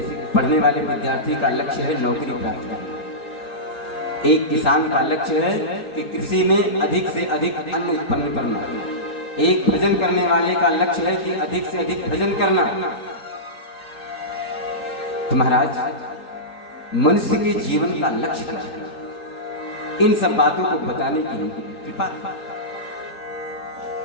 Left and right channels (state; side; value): late; right; 3.8 ms